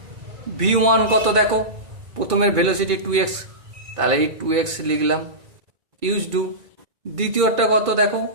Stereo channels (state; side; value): late; left; 2.3 ms